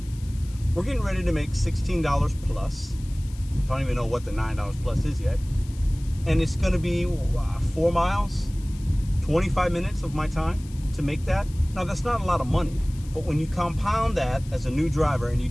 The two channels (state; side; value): noise; left; hiss, 22 dB below the sound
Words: We're getting ready to make $16 plus. I don't even know what the $9 plus is yet. And it's going to be 4 miles, 25 minutes of my time to make that. Now, that's not a lot of money, but when you compound that as a new driver and you